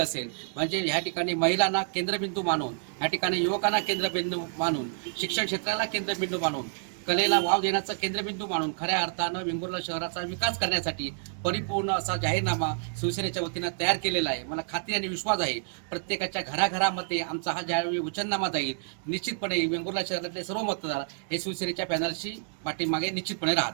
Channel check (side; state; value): left; silent; digital silence